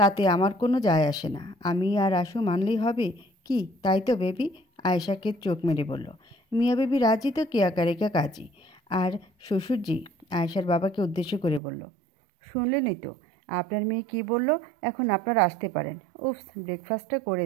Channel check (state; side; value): drops out; left; at 11.6 s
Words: আমার কোনো যায় আসে না। আমি আর আশু মানলেই হবে কি, তাই তো বেবি? আয়েশাকে চোখ মেরে বলল। মিয়া বেবি রাজি তো কেয়া কারেকা কাজী। আর শ্বশুরজি আয়েশার বাবাকে উদ্দেশ্য করে বলল, শুনলেনই তো আপনার মেয়ে কি বলল, এখন আপনারা আসতে পারেন। উফস, ব্রেকফাস্টটা করে